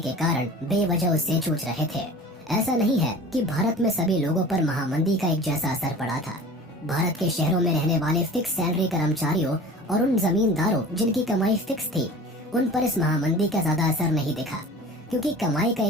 कारण बेवजह उससे जूझ रहे थे। ऐसा नहीं है कि भारत में सभी लोगों पर महामंदी का एक जैसा असर पड़ा था। भारत के शहरों में रहने वाले फिक्स सैलरी कर्मचारियों और उन जमींदारों जिनकी कमाई फिक्स थी, उन पर इस महामंदी का ज्यादा असर नहीं दिखा, क्योंकि कमाई का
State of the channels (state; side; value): normal; both; correlation 0.40